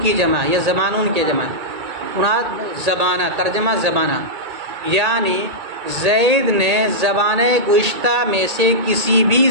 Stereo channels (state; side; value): late; left; 1.8 ms